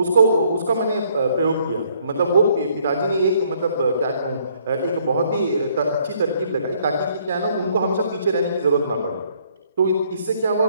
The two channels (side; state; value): both; inverted; correlation -0.65